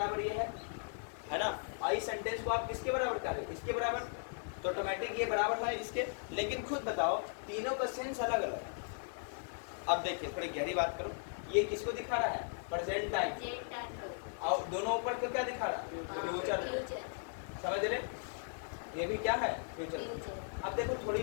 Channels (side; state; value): right; silent; 53 dB below the other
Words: ये है ना। और इस सेंटेंस को आप किसके बराबर करें, इसके बराबर, तो ऑटोमेटिक ये बराबर है इसके। लेकिन खुद बताओ, तीनों का सेंस अलग अलग है। अब देखिए थोड़ी गहरी बात करो, ये किसको दिखा रहा है, प्रेजेंट टाइम, और दोनों ऊपर को क्या दिखा रहा है, फ्यूचर। समझ रहे, ये भी क्या है, फ्यूचर। अब देखो थोड़ी